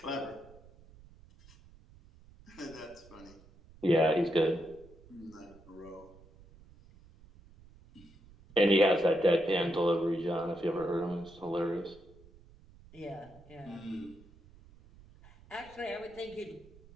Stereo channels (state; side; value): noise; right; rumble, 24 dB below the sound